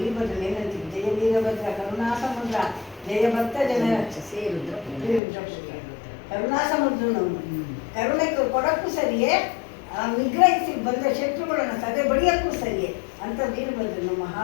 ವೀರಭದ್ರ ಏನಂತೀವಿ, ಜಯ ವೀರಭದ್ರ ಕರುಣಾ ಸಮುದ್ರ, ಜಯ ಭಕ್ತ ಜನ ಕರುಣಾ ಸಮುದ್ರ. ನಾವು ಕರುಣೆ ಕೊಡಕ್ಕೂ ಸರಿಯೇ, ನಿಗ್ರಹಿಸಿ ಬಂದ ಶತ್ರುಗಳನ್ನು ಸದೆ ಬಡಿಯಕ್ಕೂ ಸರಿಯೇ ಅಂತ ವೀರಭದ್ರನು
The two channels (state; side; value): drops out; right; at 5.2 s